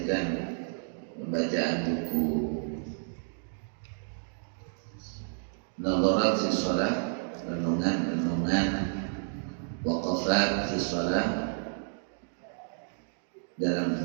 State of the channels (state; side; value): silent; left; digital silence